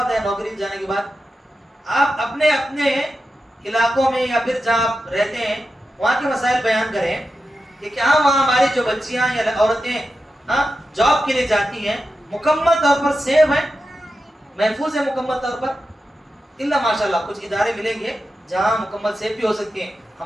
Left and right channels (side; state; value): both; normal; correlation 0.90